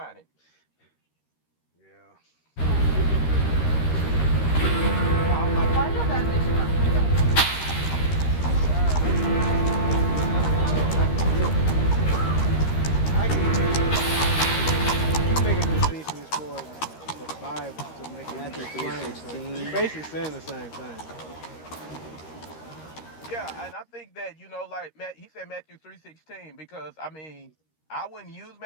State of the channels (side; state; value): right; late; 13 ms